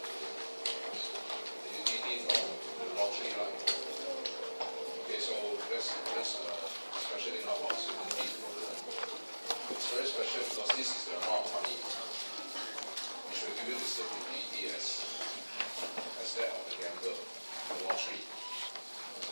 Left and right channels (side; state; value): both; inverted; correlation -1.00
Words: The UTD from the lottery, right? Okay, so that's special thing about certainty. It's very special because this is the amount of money which will give you the same UTD as that of the gambler, the lottery.